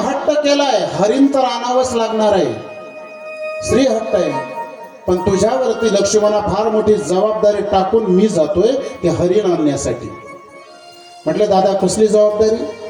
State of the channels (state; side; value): identical; both; correlation 1.00